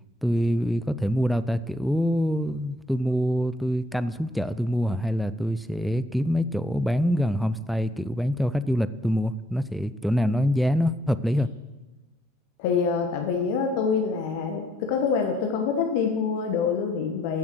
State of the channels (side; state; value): both; normal; correlation 0.69